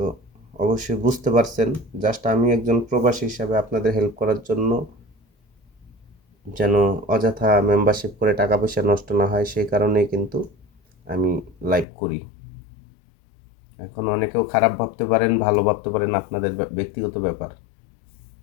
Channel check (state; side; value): drops out; right; at 11.9 s